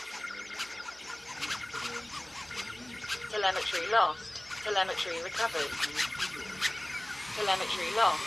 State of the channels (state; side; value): noise; right; hum, 29 dB below the sound